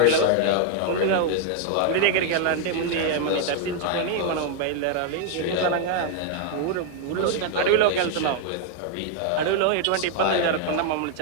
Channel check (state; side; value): different; both; correlation 0.00